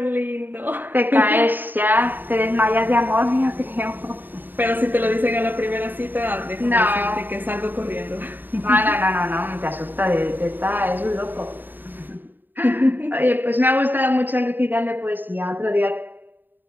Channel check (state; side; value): late; left; 0.091 ms